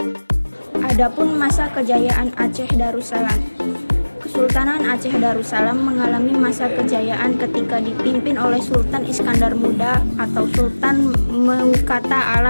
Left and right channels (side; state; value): both; inverted; correlation -1.00